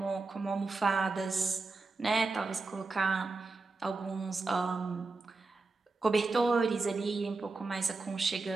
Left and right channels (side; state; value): left; quieter; 3.7 dB